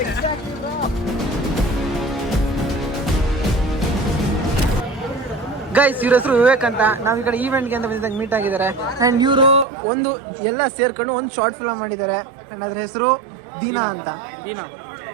ಗೈಸ್ ಇವ್ರ ಹೆಸರು ವಿವೇಕ್ ಅಂತ. ನಾವು ಈ ಕಡೆ ಈವೆಂಟ್ಗೆ ಅಂತ ಬಂದಿದ್ದಾಗ ಮೀಟ್ ಆಗಿದ್ದಾರೆ. ಆ್ಯಂಡ್ ಇವರು ಒಂದು ಎಲ್ಲ ಸೇರ್ಕೊಂಡು ಒಂದು ಶಾರ್ಟ್ ಫಿಲ್ಮ್ ಮಾಡಿದ್ದಾರೆ. ಆ್ಯಂಡ್ ಅದ್ರ ಹೆಸರು ದೀನಾ ಅಂತ.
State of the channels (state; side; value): drops out; left; at 9.7 s